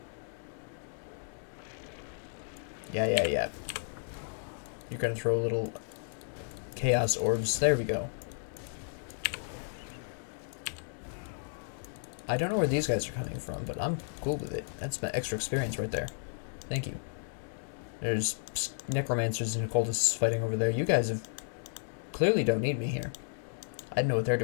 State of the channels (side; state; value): right; silent; digital silence